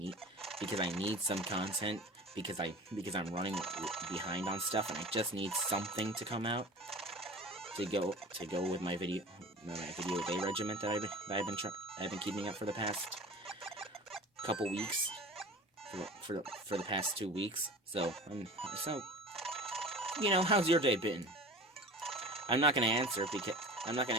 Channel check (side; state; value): both; normal; correlation 0.38